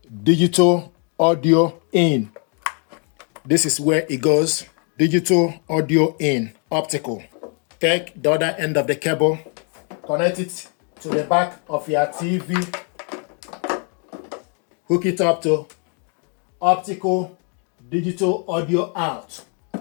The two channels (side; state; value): right; quieter; 39.9 dB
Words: digital audio in. This is where it goes. Digital audio in, optical. Take the other end of the cable, connect it to the back of your TV, hook it up to optical digital audio out.